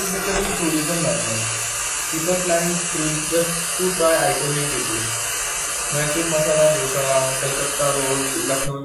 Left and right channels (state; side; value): identical; both; correlation 1.00